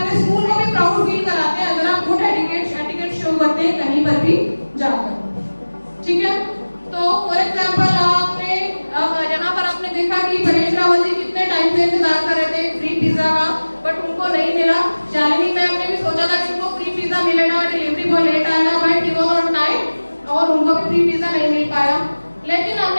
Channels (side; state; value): both; inverted; correlation -1.00